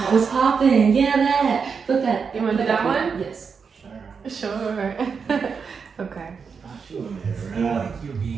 What's poppin'? Yeah, that. Put that. You want to do that one? Yes. Sure. Okay.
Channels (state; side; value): quieter; left; 5.8 dB